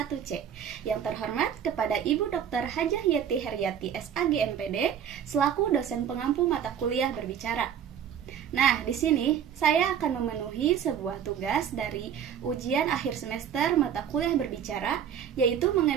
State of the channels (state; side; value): quieter; left; 8.7 dB